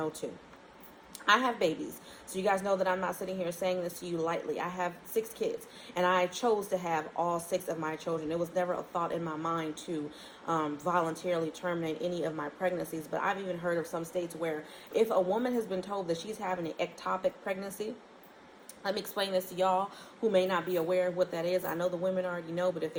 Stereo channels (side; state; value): both; identical; correlation 1.00